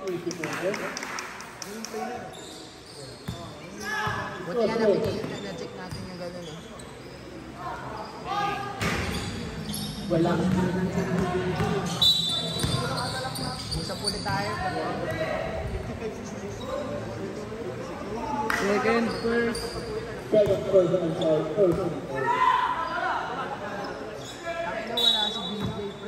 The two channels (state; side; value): identical; both; correlation 1.00